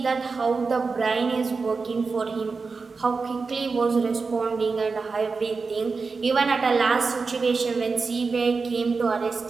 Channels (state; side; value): quieter; left; 4.5 dB